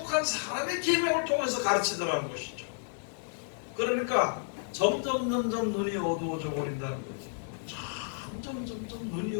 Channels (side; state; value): right; silent; 57 dB below the other